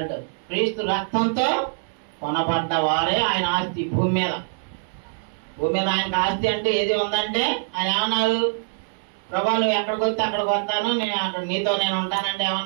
క్రీస్తు రక్తంతో కొనబడ్డ వారే ఆయన ఆస్తి భూమి మీద. భూమి మీద ఆయనకు ఆస్తి అంటే ఏది ఉందంటే ఆయన ఏమన్నాడు, ప్రభా నువ్వు ఎక్కడికి వస్తే అక్కడికి వస్తాను, నేను అక్కడ నీతో నేను ఉంటానంటే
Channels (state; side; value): silent; left; digital silence